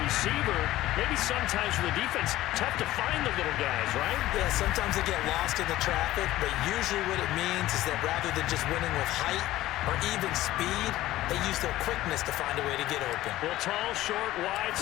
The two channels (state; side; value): quieter; right; 15.6 dB